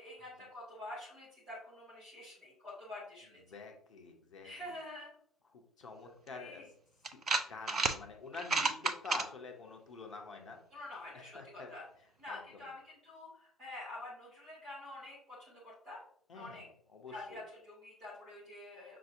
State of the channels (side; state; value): both; normal; correlation 0.62